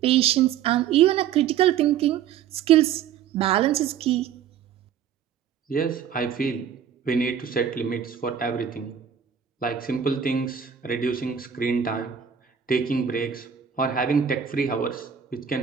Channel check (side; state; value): left; quieter; 8.4 dB